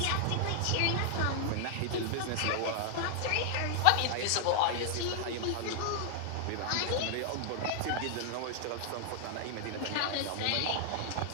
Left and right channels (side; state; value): both; different; correlation 0.00